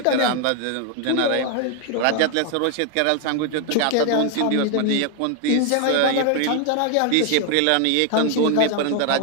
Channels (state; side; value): different; both; correlation 0.00